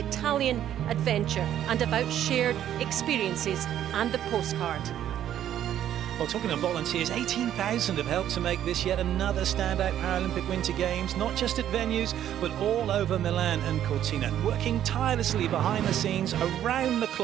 adventure and about shared experiences and the postcard. Well, talking of volunteers, 18,000 have helped to make this yet another standout Paralympic Winter Games, not just at venues, but all over Milan and Cortina, working tirelessly behind the scenes, around the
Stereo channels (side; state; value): left; quieter; 11.0 dB